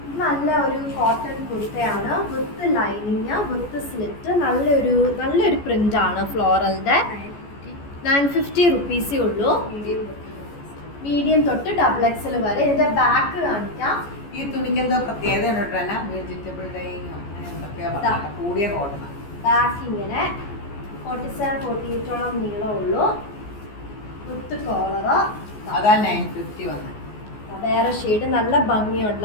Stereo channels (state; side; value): late; right; 14 ms